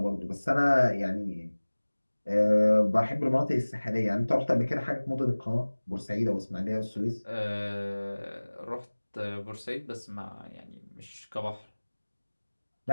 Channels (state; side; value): inverted; both; correlation -1.00